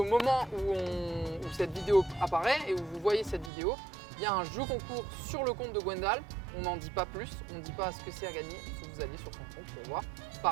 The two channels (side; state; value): left; drops out; at 3.5 s